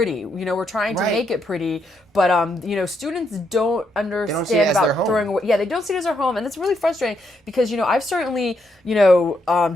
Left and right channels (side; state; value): both; normal; correlation 0.78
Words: We're trying to make it pretty, but students don't understand about throwing away. Yeah, they don't see it as their home, and it's really frustrating because I've certainly